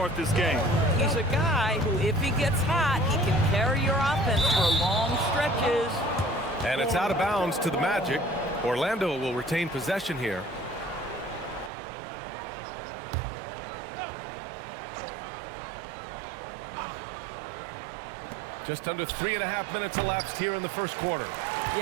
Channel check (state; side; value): drops out; left; at 11.7 s